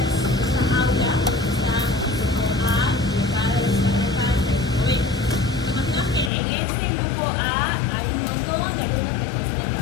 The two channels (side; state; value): right; drops out; at 6.3 s